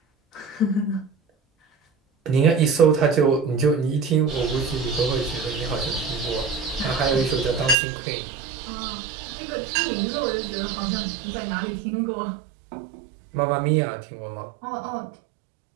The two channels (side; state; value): left; drops out; at 7.8 s